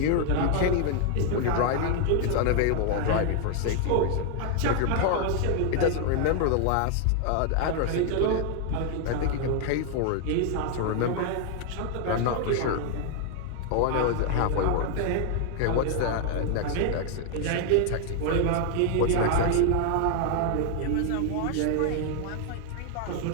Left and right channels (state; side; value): different; both; correlation 0.00